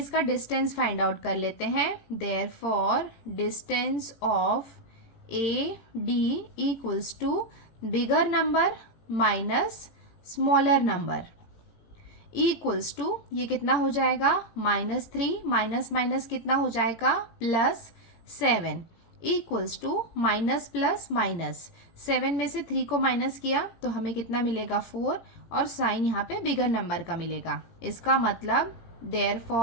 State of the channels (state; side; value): late; right; 17 ms